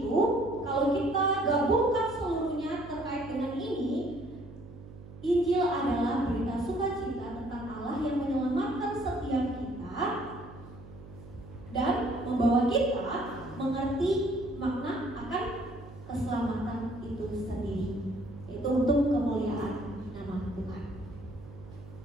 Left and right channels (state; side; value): noise; right; hum, 16 dB below the sound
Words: kalau kita gabungkan seluruhnya terkait dengan ini, Injil adalah berita sukacita tentang Allah yang menyelamatkan setiap kita dan membawa kita mengerti makna akan keselamatan itu sendiri, yaitu untuk kemuliaan nama Tuhan.